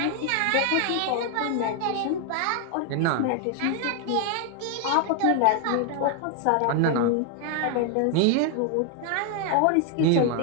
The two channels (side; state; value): both; different; correlation 0.00